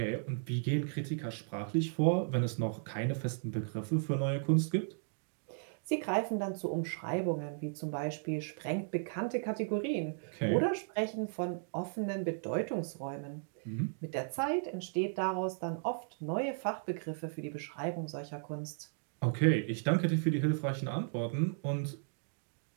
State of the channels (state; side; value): silent; left; digital silence